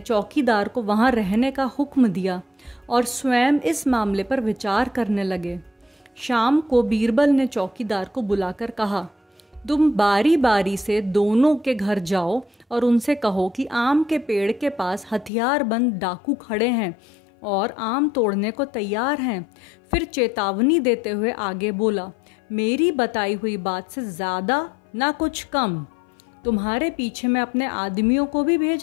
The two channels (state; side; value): drops out; right; at 15.3 s